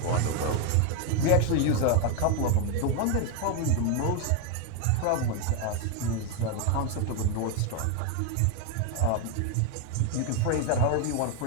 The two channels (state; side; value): different; both; correlation 0.01